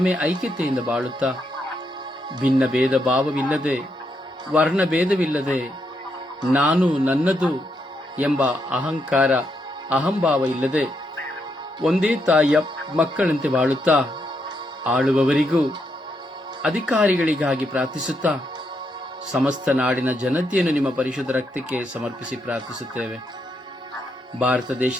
ಐಕ್ಯತೆಯಿಂದ ಬಾಳುತ್ತಾ ಭಿನ್ನ ಭೇದ ಭಾವವಿಲ್ಲದೆ, ವರ್ಣ ಭೇದವಿಲ್ಲದೆ, ನಾನು ನನ್ನದು ಎಂಬ ಅಹಂಕಾರ, ಅಹಂಭಾವ ಇಲ್ಲದೆ ಒಂದೇ ತಾಯಿಯ ಮಕ್ಕಳಂತೆ ಬಾಳುತ್ತಾ ಆಳುವವರಿಗೂ ಅಧಿಕಾರಿಗಳಿಗಾಗಿ ಪ್ರಾರ್ಥಿಸುತ್ತಾ ಸಮಸ್ತ ನಾಡಿನ ಜನತೆಯನ್ನು ನಿಮ್ಮ ಪರಿಶುದ್ಧ ರಕ್ತಕ್ಕೆ ಸಮರ್ಪಿಸಿ ಪ್ರಾರ್ಥಿಸುತ್ತೇವೆ. ಭಾರತ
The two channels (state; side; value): normal; both; correlation 0.79